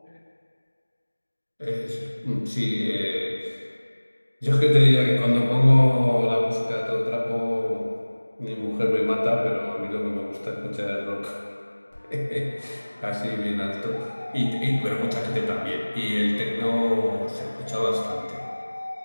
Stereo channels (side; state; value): both; inverted; correlation -1.00